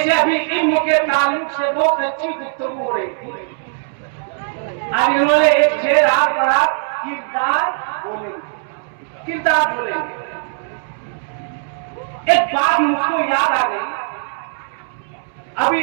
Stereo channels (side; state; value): left; silent; 66 dB below the other